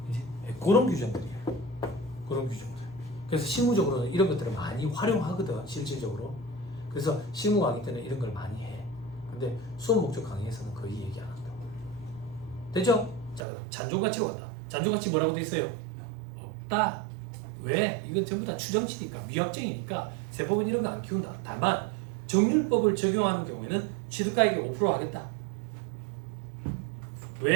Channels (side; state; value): left; drops out; at 13.4 s